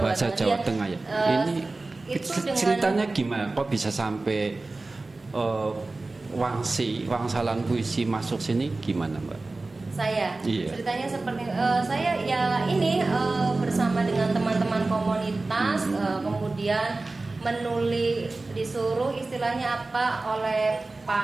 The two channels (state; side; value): quieter; left; 3.3 dB